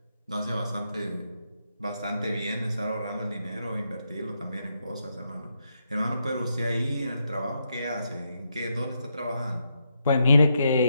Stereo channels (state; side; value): inverted; both; correlation -0.81